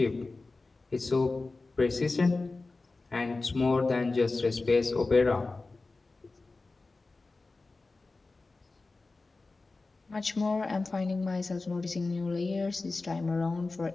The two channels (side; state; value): right; quieter; 3.5 dB